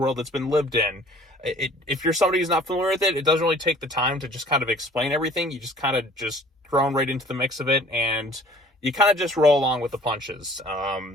that's been lived in. If you're somebody who's not familiar with it, it doesn't really take the time to just kind of explain everything. You just kind of just thrown right into the mix of it, and you kind of just roll along with the punches.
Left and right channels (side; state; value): both; normal; correlation 0.52